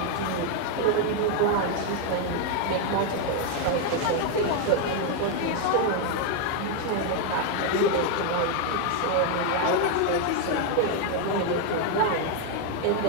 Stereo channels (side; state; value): both; different; correlation 0.01